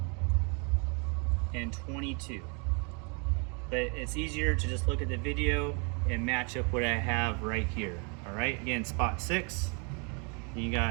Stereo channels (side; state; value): left; quieter; 34.5 dB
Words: and 22. But it's easier to just look at the video and match up what I have right here. All right, again, spot 6, and you